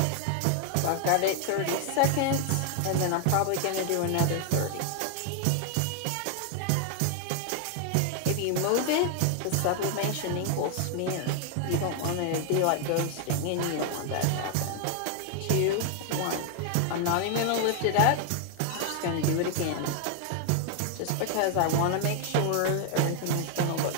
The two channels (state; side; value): different; both; correlation 0.00